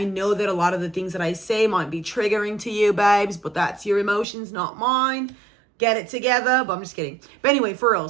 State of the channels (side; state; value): left; drops out; at 4.2 s